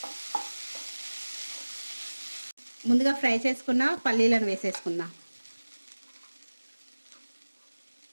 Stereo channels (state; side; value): inverted; both; correlation -1.00